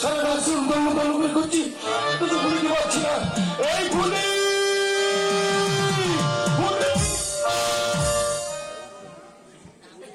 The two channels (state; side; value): identical; both; correlation 1.00